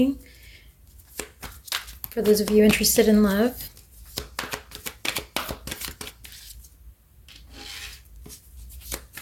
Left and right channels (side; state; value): both; identical; correlation 1.00